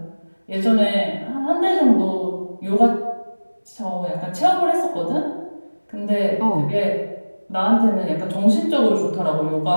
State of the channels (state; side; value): inverted; both; correlation -1.00